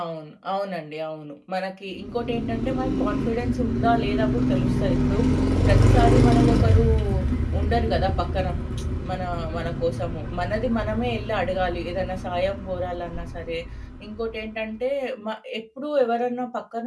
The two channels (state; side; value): identical; both; correlation 1.00